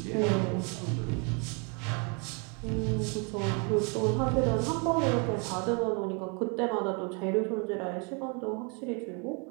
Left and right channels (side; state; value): left; quieter; 34.6 dB